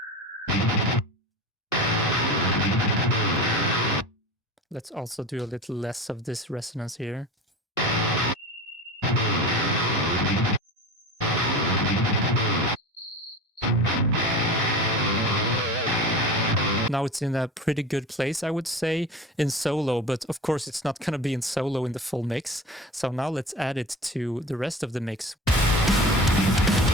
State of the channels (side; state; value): both; normal; correlation 0.32